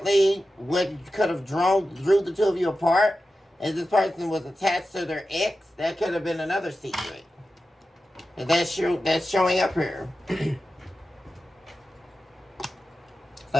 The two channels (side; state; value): both; normal; correlation 0.93